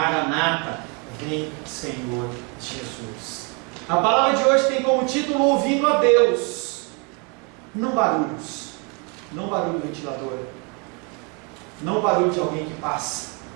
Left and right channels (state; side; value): quieter; left; 32.4 dB